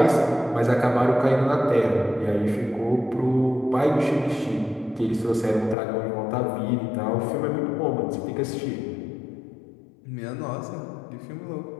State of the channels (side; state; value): right; drops out; at 5.8 s